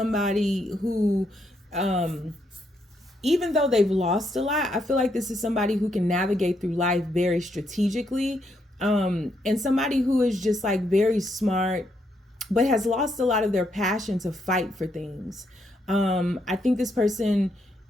who, even though they've lost a lot, I feel like this is somebody who can navigate through life very strategically, and somebody who is just like very smart, but has lost a lot of their passion to fight for things. I think this person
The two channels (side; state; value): both; normal; correlation 0.77